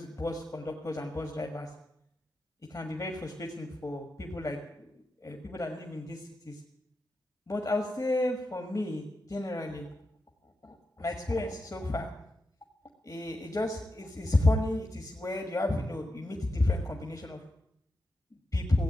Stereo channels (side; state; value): both; normal; correlation 0.88